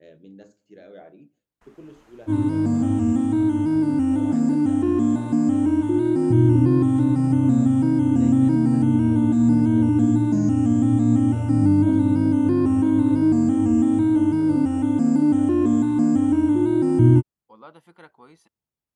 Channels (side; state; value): both; identical; correlation 1.00